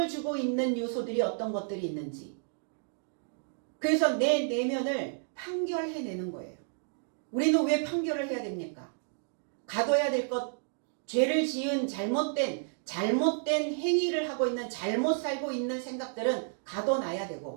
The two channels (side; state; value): left; silent; digital silence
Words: 주고 있는 요소들이 어떤 것들이 있는지. 그래서 내 내면을 판결해내는 거예요. 우리는 왜 판결을 해야 됩니까? 가둬야 될 것, 죄를 지은 잘못된 행위를 하고 있는, 잘못 살고 있는 생각들은 가둬놔야